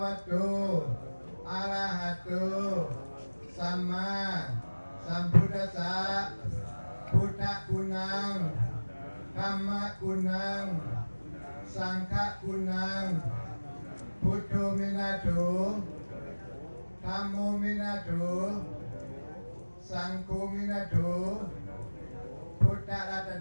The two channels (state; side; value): inverted; both; correlation -1.00